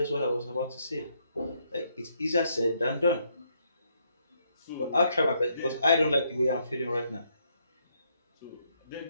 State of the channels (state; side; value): inverted; both; correlation -0.74